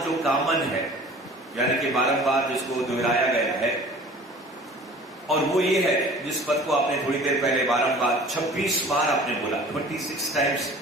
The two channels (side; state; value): both; normal; correlation 0.46